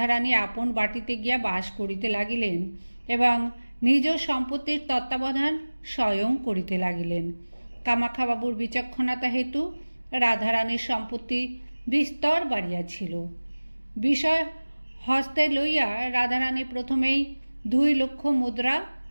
আপন বাটিতে গিয়া বাস করিতে লাগিলেন এবং নিজ সম্পত্তির তত্ত্বাবধান স্বয়ং করিতে লাগিলেন। কামাখ্যাবাবুর বিচক্ষণতা হেতু রাধারানীর সম্পত্তি বিস্তর বাড়িয়াছিল। বিষয় হস্তে লইয়া রাধারানী প্রথমেই 2 লক্ষ মুদ্রা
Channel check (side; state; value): both; inverted; correlation -1.00